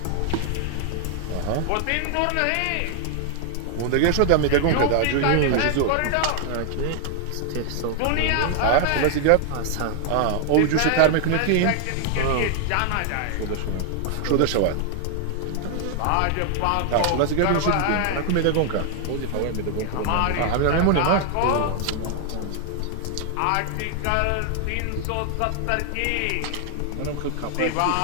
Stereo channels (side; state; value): both; different; correlation 0.00